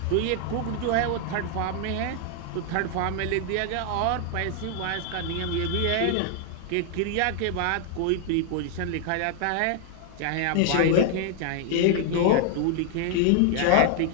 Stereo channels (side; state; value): both; different; correlation 0.00